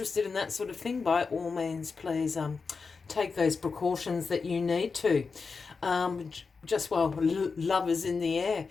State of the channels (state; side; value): quieter; right; 4.8 dB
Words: in that sort of thing, by all means, please take those precautions that you need to. Just while love is in the air.